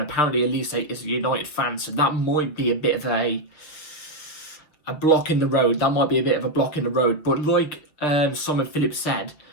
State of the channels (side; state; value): right; late; 6.8 ms